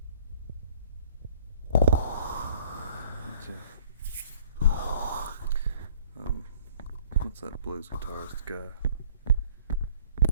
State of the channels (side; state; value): both; inverted; correlation -0.56